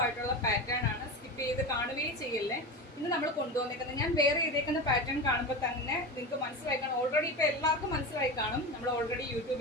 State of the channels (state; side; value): normal; both; correlation 0.24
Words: ആയിട്ടുള്ള പാറ്റേൺ ആണ്. സ്കിപ്പ് ചെയ്ത് കാണുകയും ചെയ്യല്ലേ. ഇന്ന് നമ്മൾ കൊണ്ടുവന്നേക്കുന്നത് ഞാൻ വേറെ ചെയ്തേക്കുന്ന പാറ്റേൺ കാണുമ്പോൾ തന്നെ നിങ്ങൾക്ക് മനസ്സിലായി കാണും. ഓൾറെഡി ഇപ്പൊ എല്ലാവർക്കും മനസ്സിലായി കാണും. നമ്മൾ ഓൾറെഡി